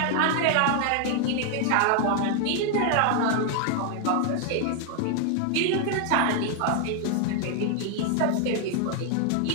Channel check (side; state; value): both; different; correlation 0.00